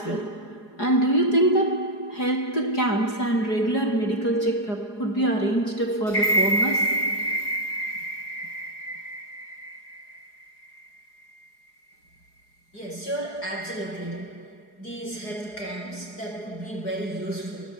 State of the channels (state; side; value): late; right; 4.8 ms